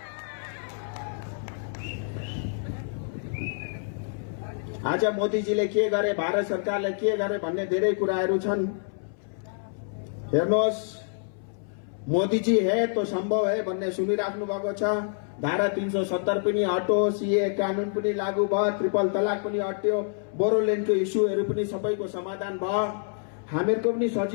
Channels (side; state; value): right; silent; 60 dB below the other